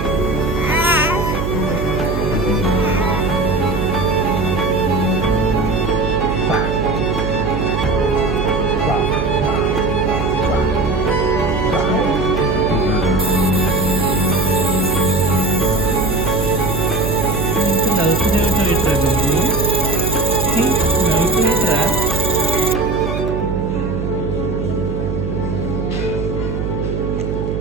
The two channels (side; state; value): right; noise; hum, 3 dB below the sound